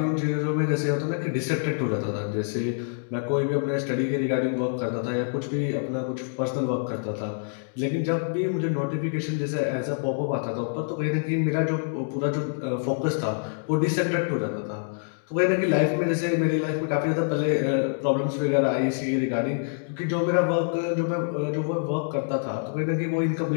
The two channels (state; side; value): silent; right; digital silence